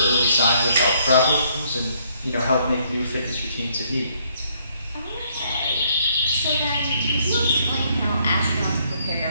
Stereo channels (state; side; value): inverted; both; correlation -0.68